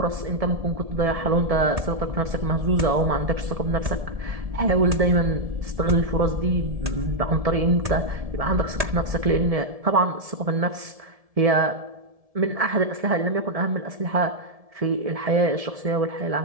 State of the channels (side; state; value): left; late; 1.7 ms